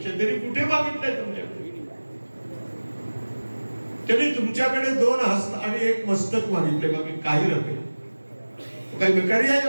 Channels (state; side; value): inverted; both; correlation -1.00